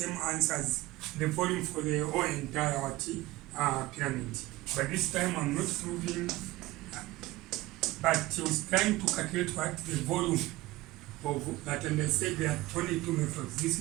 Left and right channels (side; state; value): left; quieter; 18.9 dB